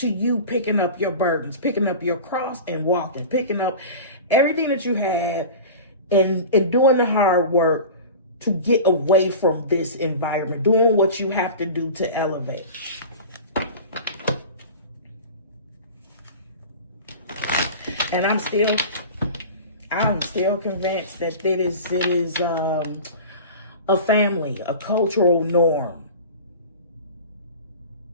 you picking up your burdens, picking up your cross and walking, picking up everything that you had and doing the hard work to get away from this environment, doing what you have to do to elevate. And I'm still convinced that it is a family, a cultural norm.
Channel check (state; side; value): inverted; both; correlation -0.35